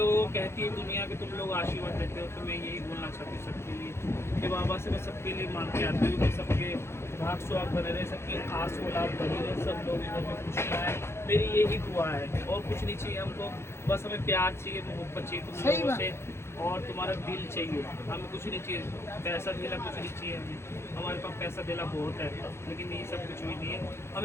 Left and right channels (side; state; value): right; late; 0.12 ms